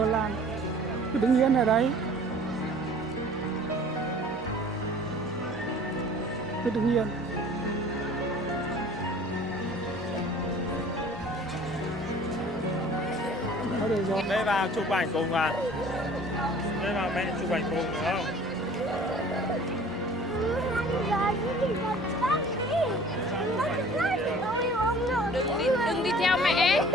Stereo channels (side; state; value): both; normal; correlation 0.49